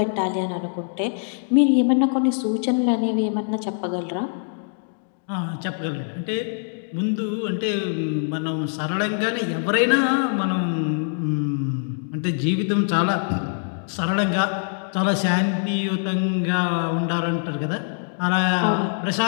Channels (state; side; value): silent; right; digital silence